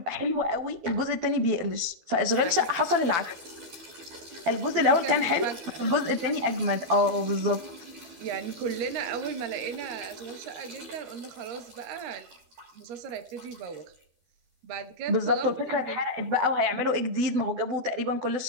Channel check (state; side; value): late; left; 12 ms